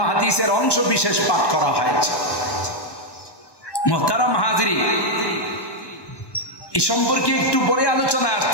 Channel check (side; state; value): right; late; 1.1 ms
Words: হাদিসের অংশ বিশেষ পাঠ করা হয়েছে। মুহতারাম হাজিরিন, এই সম্পর্কে একটু পরে আলোচনা